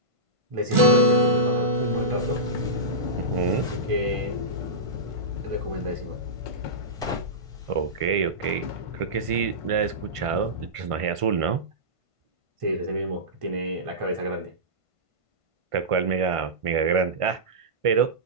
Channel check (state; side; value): late; left; 1.5 ms